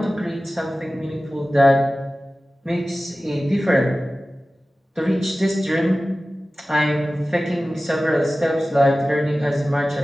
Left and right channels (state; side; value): normal; both; correlation 0.96